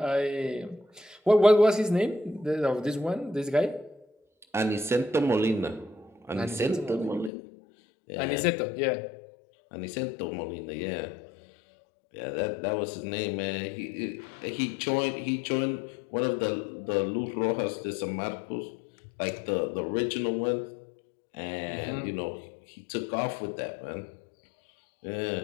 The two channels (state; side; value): drops out; right; at 7.3 s